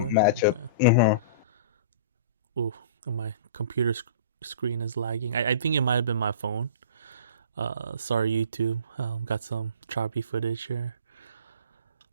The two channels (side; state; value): both; inverted; correlation -0.41